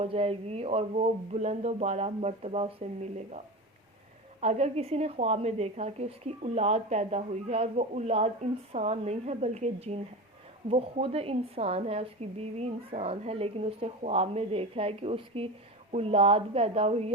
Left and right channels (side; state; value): both; normal; correlation 0.25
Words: جائے گی اور وہ بلند و بالا مرتبہ اسے ملے گا۔ اگر کسی نے خواب میں دیکھا کہ اس کی اولاد پیدا ہوئی ہے اور وہ اولاد انسان نہیں ہے بلکہ جن ہے، وہ خود انسان ہے، اس کی بیوی انسان ہے، لیکن اس نے خواب میں دیکھا ہے کہ اس کی اولاد پیدا